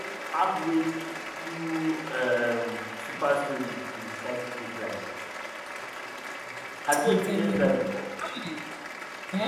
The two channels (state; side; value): identical; both; correlation 1.00